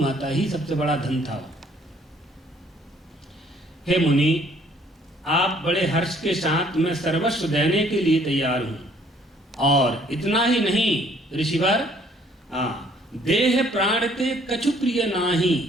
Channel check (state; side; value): normal; both; correlation 0.61